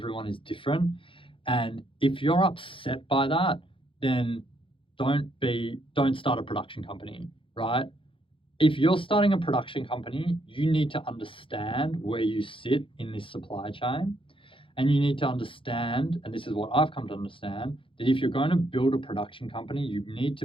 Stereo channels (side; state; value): right; late; 0.25 ms